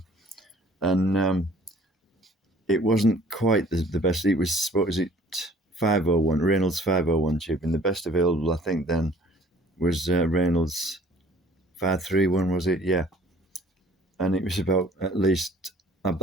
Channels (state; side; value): normal; both; correlation 0.54